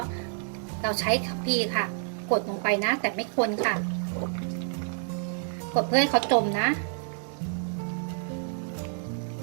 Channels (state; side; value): silent; left; 56 dB below the other